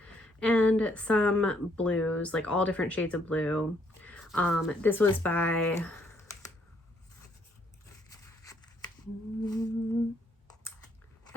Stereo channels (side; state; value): both; normal; correlation 0.69